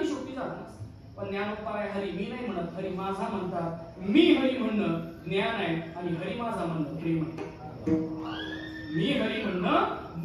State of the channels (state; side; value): identical; both; correlation 1.00